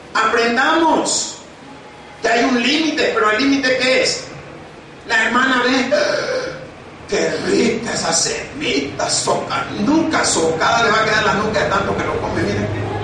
aprendamos que hay un límite, pero el límite ¿qué es? La hermana ve, qué rica esa semita, nunca socada le va a quedar la nuca de tanto que lo come, miren.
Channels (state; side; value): identical; both; correlation 1.00